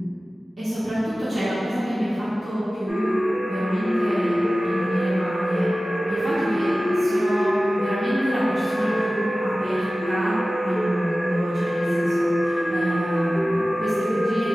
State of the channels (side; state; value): both; normal; correlation 0.96